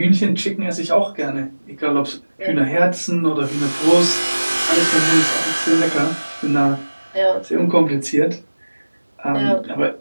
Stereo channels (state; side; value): inverted; both; correlation -1.00